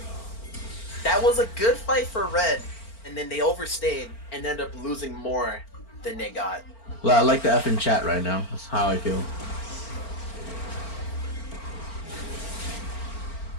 That was a good fight for Red, and then they overstayed and ended up losing more than they got. Well, I like the F in chat right now. That's how I feel.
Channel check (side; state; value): right; late; 4.4 ms